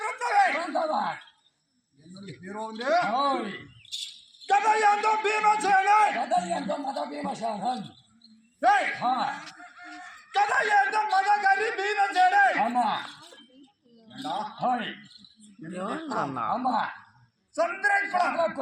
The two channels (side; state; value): both; identical; correlation 1.00